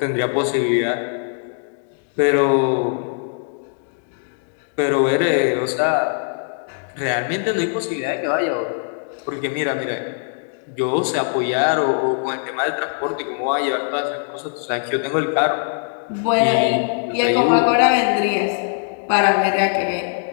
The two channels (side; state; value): right; silent; digital silence